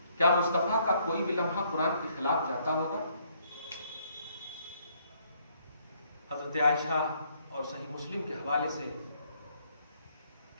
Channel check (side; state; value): both; inverted; correlation -0.68